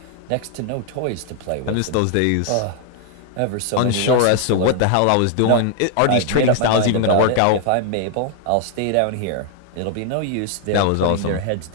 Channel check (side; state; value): both; different; correlation 0.00